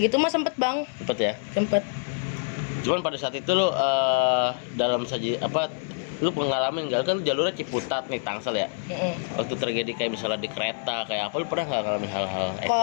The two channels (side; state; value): right; silent; 61 dB below the other